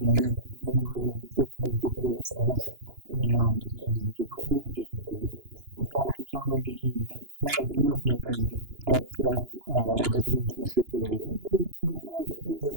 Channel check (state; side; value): late; left; 2.9 ms